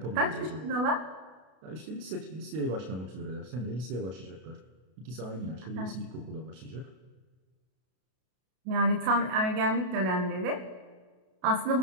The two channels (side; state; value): left; late; 32 ms